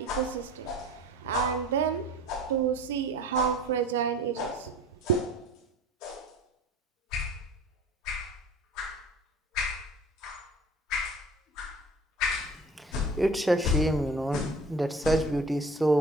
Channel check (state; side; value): normal; both; correlation 0.43